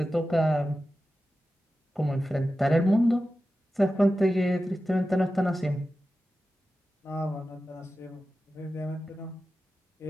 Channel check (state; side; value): normal; both; correlation 0.93